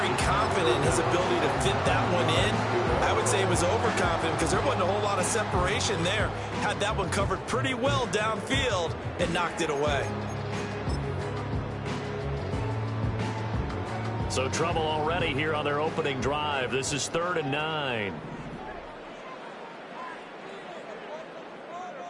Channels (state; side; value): identical; both; correlation 1.00